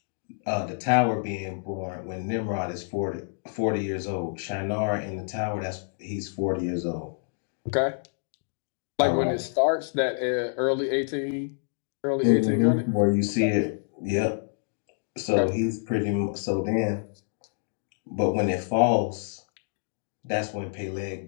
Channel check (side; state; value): right; silent; digital silence